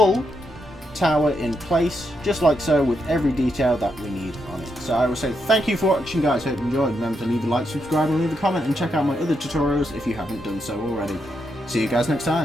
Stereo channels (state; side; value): normal; both; correlation 0.81